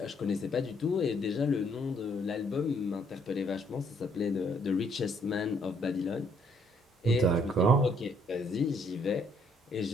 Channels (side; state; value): both; normal; correlation 0.67